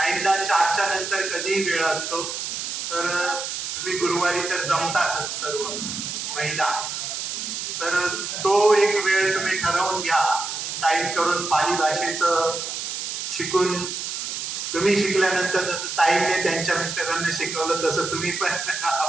4च्या नंतर कधीही वेळ असतो, तर तुम्ही गुरुवारी तर जमतातच सर्व महिला, तर तो एक वेळ तुम्ही ठरवून घ्या. ताईंकडून पाली भाषेचं शिकून, तुम्ही शिकल्यानंतर जसं ताईंनी त्यांच्या मिस्टरांना शिकवलं तसं तुम्ही पण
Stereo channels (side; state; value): right; noise; hiss, 5 dB below the sound